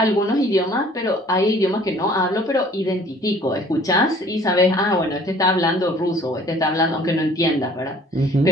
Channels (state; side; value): normal; both; correlation 0.54